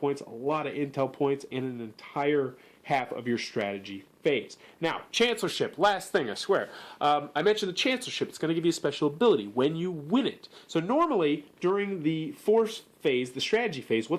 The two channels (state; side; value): identical; both; correlation 1.00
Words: a lot of intel points, and an entire half of your strategy phase. Now, Chancellorship, last thing, I swear. I mentioned the Chancellorship. It's going to give you a special ability when you win it. So normally, during the force phase, the strategy phase,